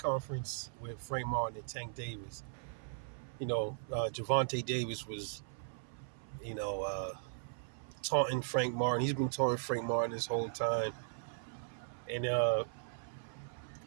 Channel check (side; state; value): left; silent; 52 dB below the other